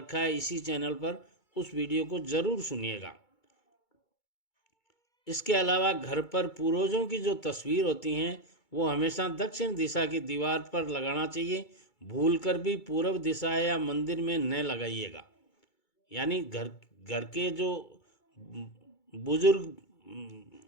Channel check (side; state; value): right; late; 2.3 ms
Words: है इसी चैनल पर, उस वीडियो को ज़रूर सुनिएगा। इसके अलावा घर पर पूर्वजों की जो तस्वीर होती हैं वो हमेशा दक्षिण दिशा की दीवार पर लगाना चाहिए। भूलकर भी पूर्व दिशा या मंदिर में न लगाइएगा। यानी घर के जो बुजुर्ग